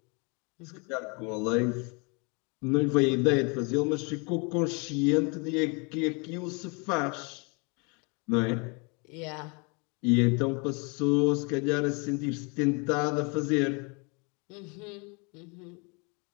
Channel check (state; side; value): quieter; right; 32.3 dB